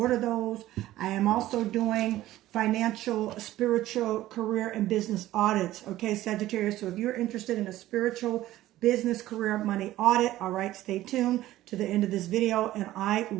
those. I am also doing financial, spiritual, career, and business audits, okay, Sagittarius? So if you're interested in a spiritual, business, career, money audit, all right, stay tuned to the end of this video and I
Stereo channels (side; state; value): left; quieter; 15.1 dB